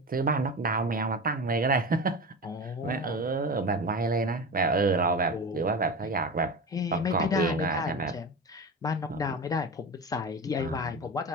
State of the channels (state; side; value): normal; both; correlation 0.27